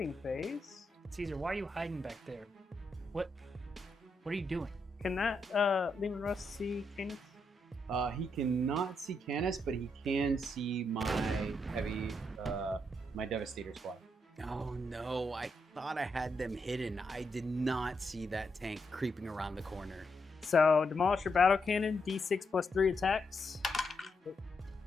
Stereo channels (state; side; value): normal; both; correlation 0.81